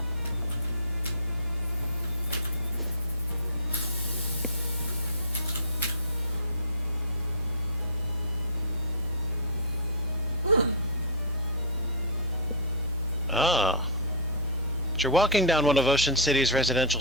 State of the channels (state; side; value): normal; both; correlation -0.16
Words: Ah. As you're walking down one of Ocean City's residential